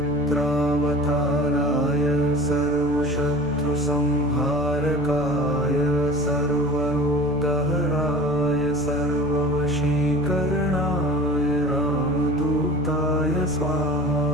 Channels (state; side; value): noise; left; rumble, 17 dB below the sound